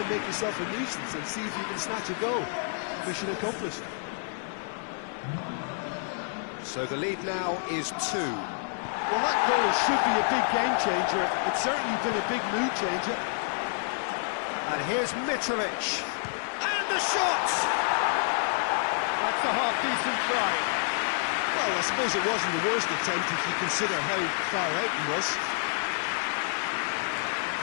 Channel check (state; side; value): silent; right; 59 dB below the other